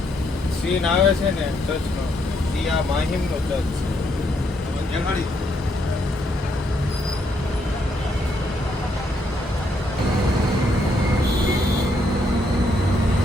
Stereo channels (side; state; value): both; normal; correlation 0.74